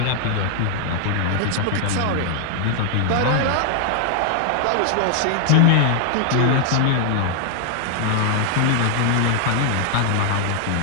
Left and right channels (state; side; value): different; both; correlation 0.00